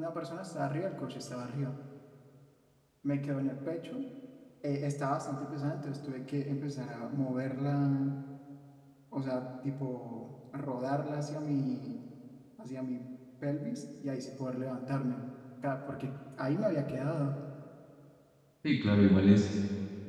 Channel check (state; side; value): identical; both; correlation 1.00